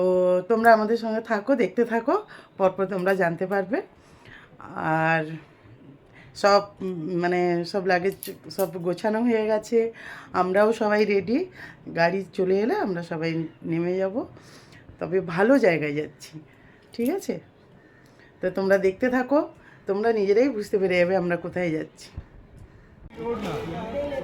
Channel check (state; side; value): identical; both; correlation 1.00